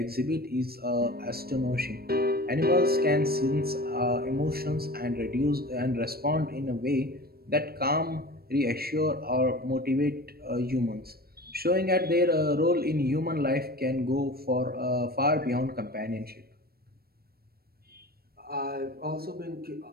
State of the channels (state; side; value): late; left; 0.45 ms